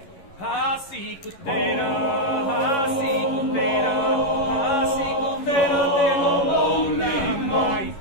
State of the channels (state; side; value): late; right; 11 ms